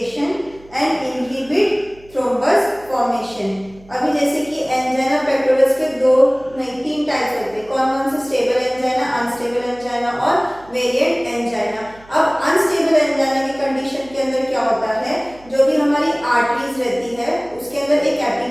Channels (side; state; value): right; noise; hum, 24 dB below the sound